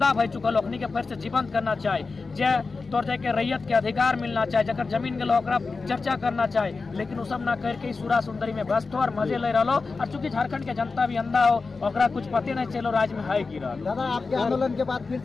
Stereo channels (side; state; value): right; quieter; 4.2 dB